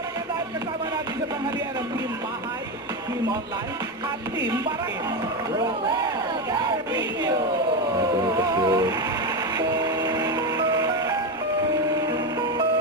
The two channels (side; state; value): both; normal; correlation 0.14